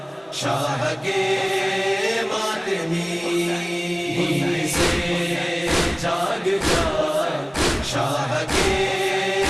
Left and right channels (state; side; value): identical; both; correlation 1.00